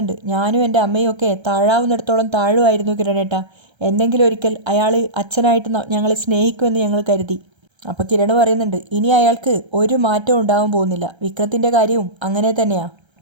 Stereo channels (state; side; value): late; left; 1.3 ms